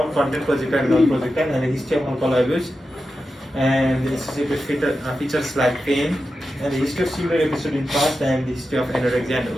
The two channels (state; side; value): normal; both; correlation 0.91